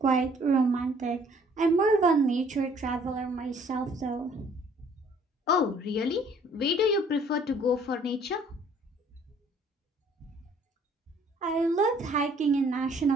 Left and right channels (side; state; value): both; normal; correlation 0.59